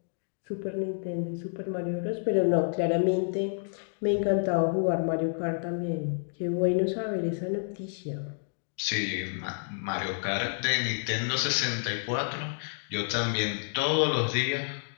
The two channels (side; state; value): right; silent; digital silence